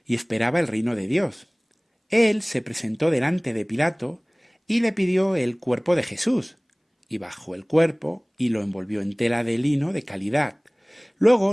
y esperaba el reino de Dios. Él se presentó delante de Pilato y le pidió el cuerpo de Jesús, y bajó el cuerpo y lo envolvió en tela de lino de calidad.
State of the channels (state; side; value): identical; both; correlation 1.00